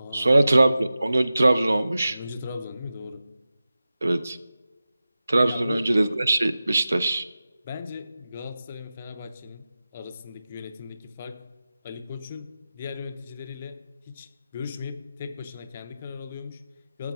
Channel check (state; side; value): inverted; both; correlation -0.94